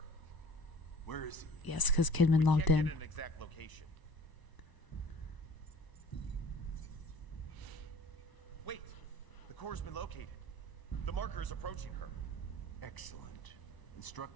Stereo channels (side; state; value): right; late; 1.0 ms